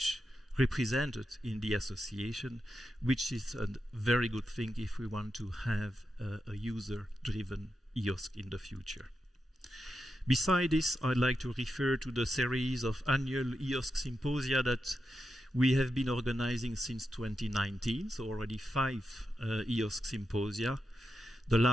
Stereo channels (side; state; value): both; normal; correlation 0.87